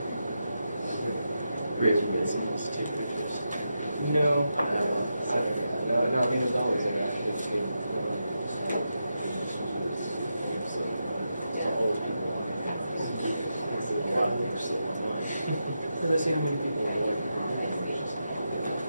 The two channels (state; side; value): inverted; both; correlation -0.86